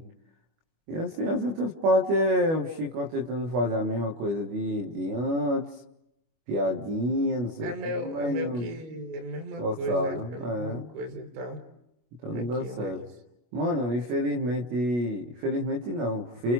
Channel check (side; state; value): left; late; 25 ms